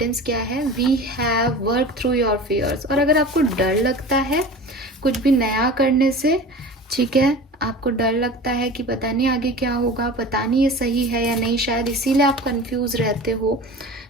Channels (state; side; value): normal; both; correlation 0.36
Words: क्या है। We have work through your fears, और अगर आपको डर लगता है कुछ भी नया करने से, ठीक है, आपको डर लगता है कि पता नहीं आगे क्या होगा, पता नहीं ये सही है या नहीं, शायद इसीलिए आप कंफ्यूज रहते हो।